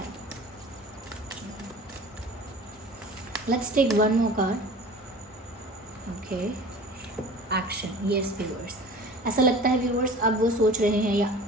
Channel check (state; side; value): normal; both; correlation 0.42